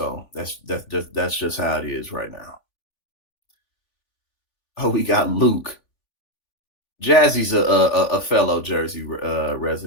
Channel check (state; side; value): late; right; 3.5 ms